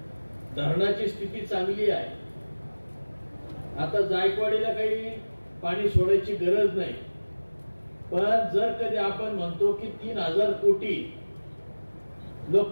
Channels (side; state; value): both; inverted; correlation -1.00